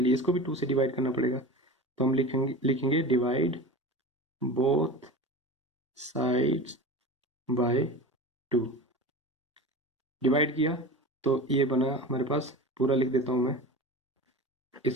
लिए इसको भी 2 से डिवाइड करना पड़ेगा। तो हम लिखेंगे divide both sides by 2। Divide किया तो ये बना हमारे पास, पूरा लिख देता हूँ मैं,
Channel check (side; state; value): both; normal; correlation 0.32